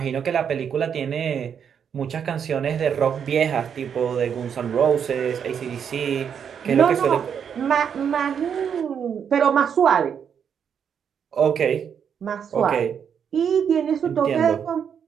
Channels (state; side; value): quieter; left; 7.7 dB